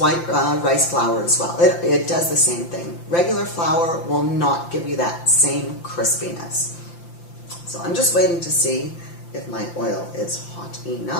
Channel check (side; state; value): right; late; 5.8 ms